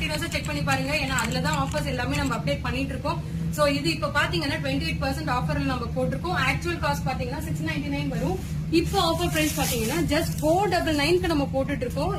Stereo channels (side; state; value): both; identical; correlation 1.00